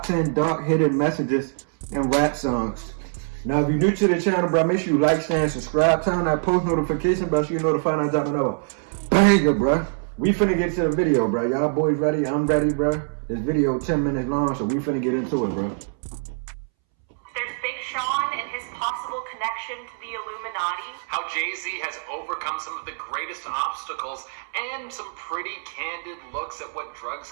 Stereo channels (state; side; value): silent; left; 62 dB below the other